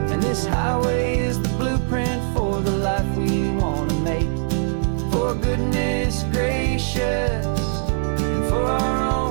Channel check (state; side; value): silent; left; digital silence